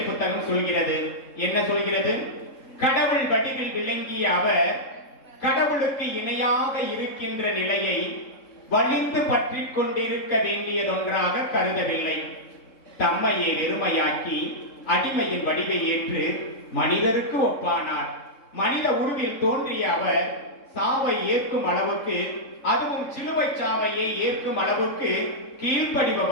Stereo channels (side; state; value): right; late; 3.7 ms